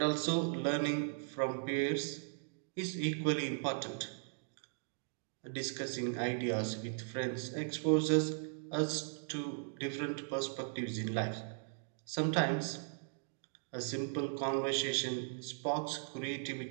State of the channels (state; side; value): silent; left; digital silence